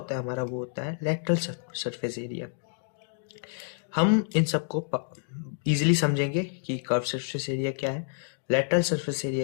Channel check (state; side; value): silent; right; digital silence